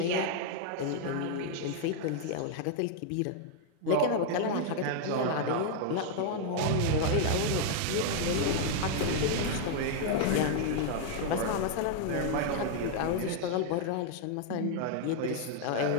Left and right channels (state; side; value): different; both; correlation 0.00